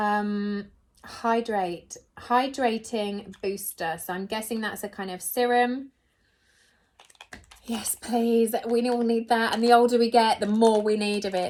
Hydrating booster. So I'm guessing that's a kind of serum. Yes, please. We all need that. And the older we get, the more we need of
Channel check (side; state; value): both; identical; correlation 1.00